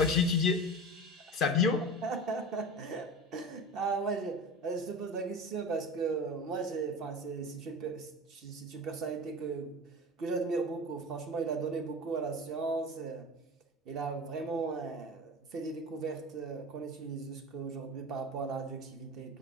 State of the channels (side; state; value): both; normal; correlation 0.31